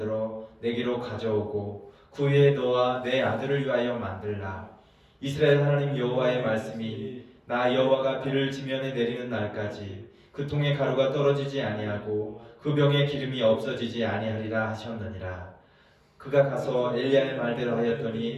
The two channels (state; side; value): identical; both; correlation 1.00